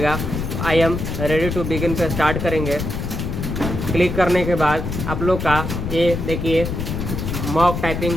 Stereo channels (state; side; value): noise; left; rumble, 4 dB below the sound